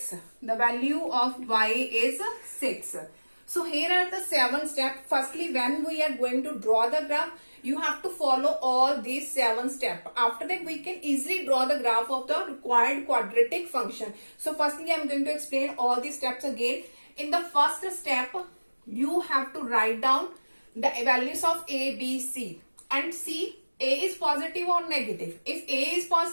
The value of y is 6. So here are the 7 steps. Firstly, when we are going to draw the graph, you have to follow all these 7 steps. After that, we can easily draw the graph of the required quadratic function. So firstly, I am going to explain all these steps again. In the first step, you have to write down the values of a, b, c, and see a is positive or negative. If a is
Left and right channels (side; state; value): both; inverted; correlation -1.00